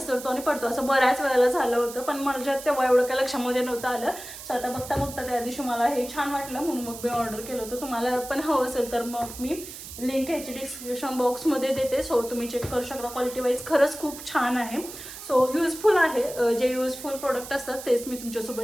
आणि पडतो. असं बऱ्याच वेळेला झालं होतं, पण माझ्या तेव्हा एवढं काय लक्षामध्ये नव्हतं आलं. सो आता बघता त्या दिवशी मला हे छान वाटलं म्हणून मग मी ऑर्डर केलं होतं. तुम्हाला पण हवं असेल तर मग मी लिंक ह्याची डिस्क्रिप्शन बॉक्समध्ये देते. सो तुम्ही चेक करू शकता. क्वालिटी वाईज खरंच खूप छान आहे. सो युजफुल आहे. जे युजफुल प्रोडक्ट असतात तेच मी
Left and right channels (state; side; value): noise; right; hiss, 12 dB below the sound